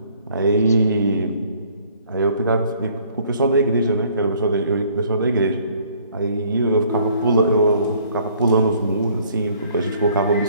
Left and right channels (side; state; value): both; inverted; correlation -0.60